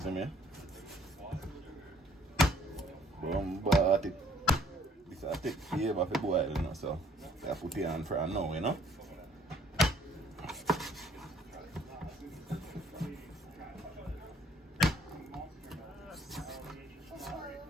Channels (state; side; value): normal; both; correlation 0.59